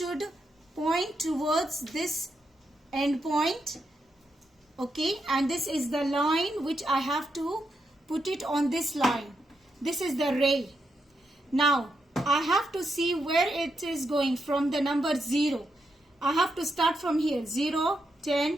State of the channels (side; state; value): both; normal; correlation 0.83